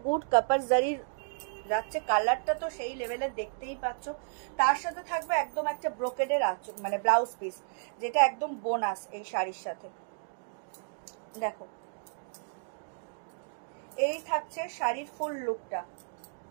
গুড, কপার জারির যাচ্ছে, কালারটা তো সেই লেভেলের, দেখতেই পাচ্ছ। তার সাথে থাকবে একদম একটা ব্রোকেডের আঁচল, মানে ব্লাউজ পিস, যেটা একদম বোনাস এই শাড়ির সাথে। দেখো, এই থাকছে শাড়ির ফুল লুকটা,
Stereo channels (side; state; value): left; silent; digital silence